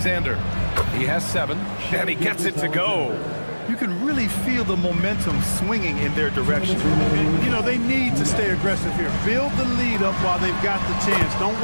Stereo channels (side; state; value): both; inverted; correlation -1.00